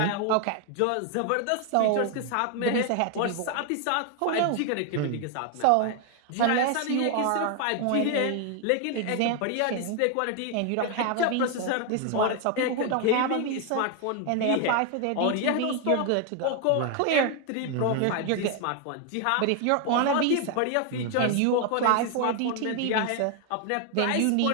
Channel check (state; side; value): different; both; correlation 0.00